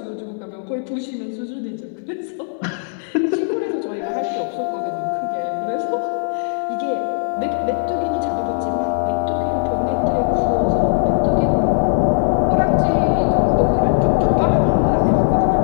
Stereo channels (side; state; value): right; silent; digital silence